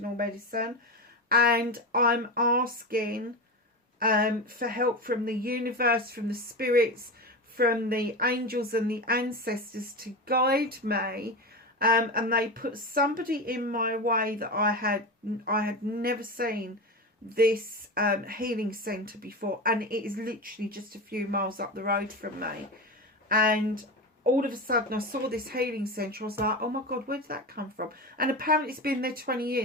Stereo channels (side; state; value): both; normal; correlation 0.22